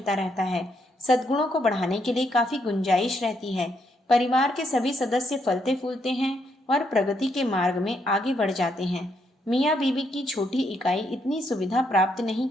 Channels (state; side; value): normal; both; correlation 0.76